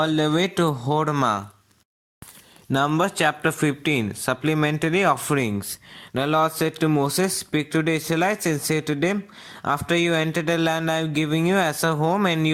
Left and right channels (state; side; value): identical; both; correlation 1.00